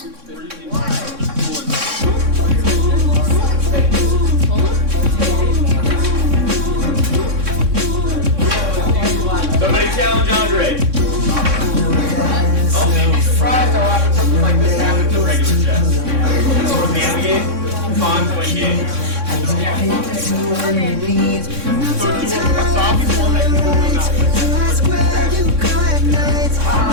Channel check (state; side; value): late; left; 3.6 ms